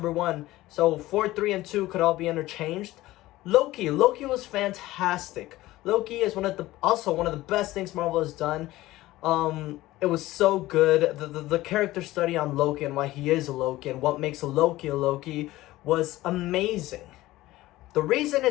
1. So 4, 3, and 2 could all be interchanged. Loki was fantastic. Loki is also one of the best things Marvel has done. It was so good. The character study on Loki and why he is a Loki and what makes a Loki was amazing. The reason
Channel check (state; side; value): quieter; right; 17.1 dB